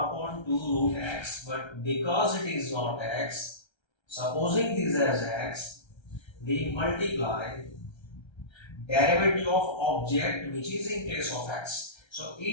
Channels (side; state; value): right; late; 1.3 ms